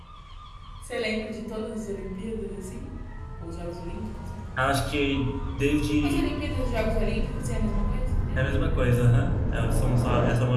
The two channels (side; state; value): both; identical; correlation 1.00